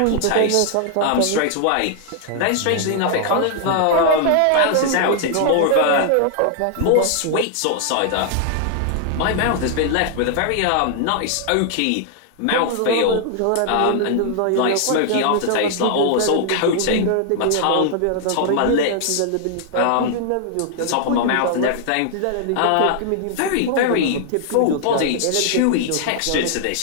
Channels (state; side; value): different; both; correlation 0.00